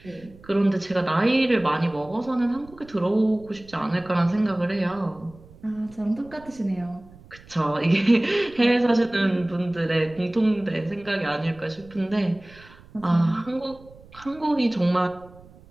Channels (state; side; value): noise; right; rumble, 23 dB below the sound